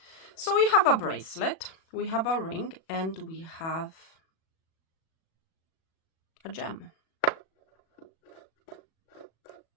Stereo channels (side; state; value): right; late; 37 ms